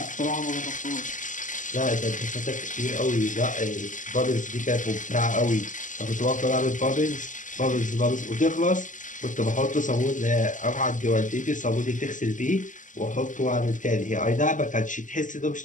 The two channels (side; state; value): right; late; 0.37 ms